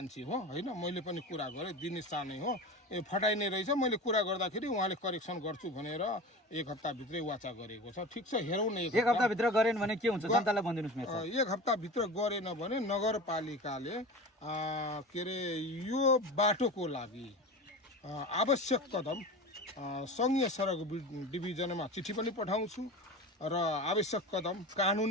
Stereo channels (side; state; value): both; normal; correlation 0.31